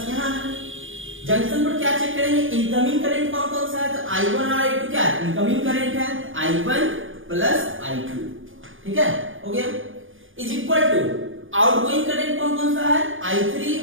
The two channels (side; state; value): left; late; 0.58 ms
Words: यहां है। जंक्शन पर क्या चेक करेंगे? इनकमिंग करंट कौन कौन सा है? तो I1 और I2 क्या है? इनकमिंग करंट है, I1 प्लस I2। ठीक है, हो गया। Is equal to outgoing current कौन कौन सा है? I3